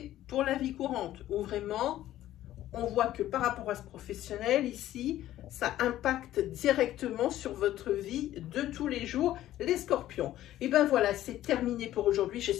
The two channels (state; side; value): quieter; right; 13.6 dB